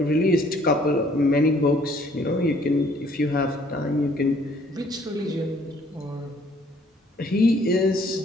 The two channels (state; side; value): normal; both; correlation 0.61